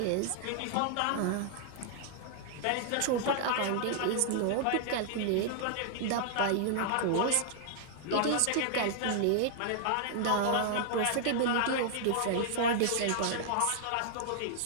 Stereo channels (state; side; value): different; both; correlation -0.01